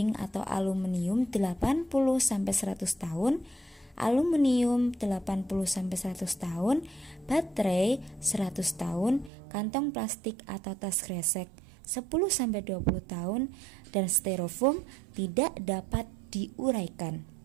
atau aluminium 80-100 tahun, aluminium 80-100 tahun, baterai 100 tahun, kantong plastik atau tas kresek 10-20 tahun, dan styrofoam tidak dapat diuraikan.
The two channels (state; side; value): drops out; left; at 9.3 s